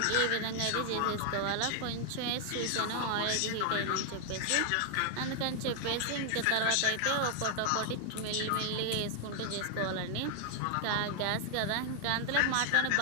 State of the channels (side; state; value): both; different; correlation 0.00